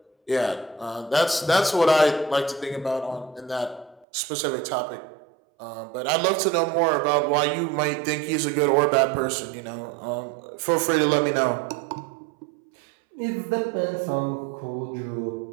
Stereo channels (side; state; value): left; drops out; at 4.0 s